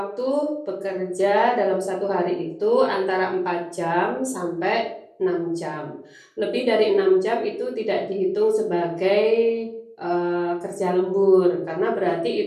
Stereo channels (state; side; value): identical; both; correlation 1.00